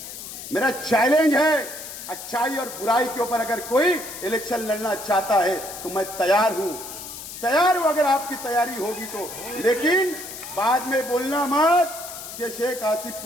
मेरा चैलेंज है, अच्छाई और बुराई के ऊपर अगर कोई इलेक्शन लड़ना चाहता है तो मैं तैयार हूं, तैयार हूं अगर आपकी तैयारी होगी तो। लेकिन बाद में बोलना मत कि शेख आसिफ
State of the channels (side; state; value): left; noise; hiss, 11 dB below the sound